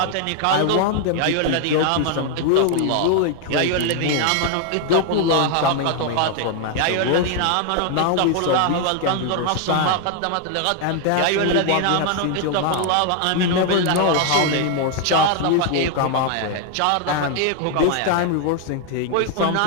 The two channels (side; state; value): both; different; correlation 0.00